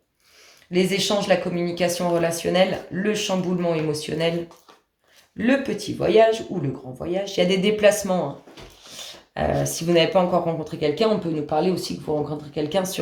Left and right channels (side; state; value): both; identical; correlation 1.00